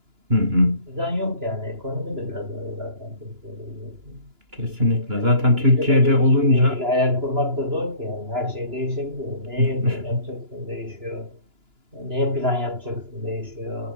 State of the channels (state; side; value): late; left; 2.9 ms